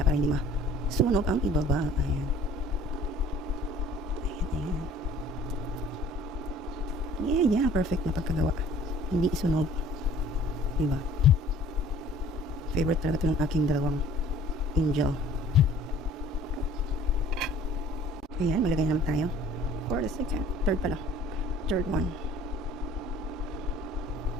para hindi masunog ang ibaba. Ayan. Ayan, ayan. Yeah, perfect na pagkagawa. Hindi isunog. Diba? Favorite talaga ito ng aking dalawang angel. Ayan, malagay naman tayo. For the second. Third pala. Third one.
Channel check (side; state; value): both; normal; correlation 0.51